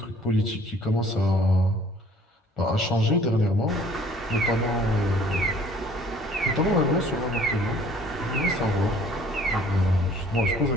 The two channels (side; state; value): both; normal; correlation 0.55